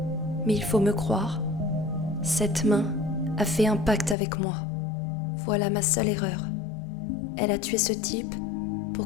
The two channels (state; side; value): drops out; right; at 4.2 s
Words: mais il faut me croire. Cette main a fait un pacte avec moi. Voilà ma seule erreur. Elle a tué ce type